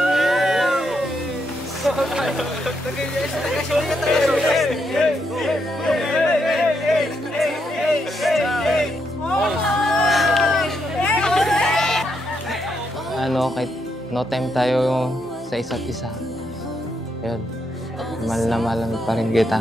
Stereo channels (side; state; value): both; normal; correlation 0.79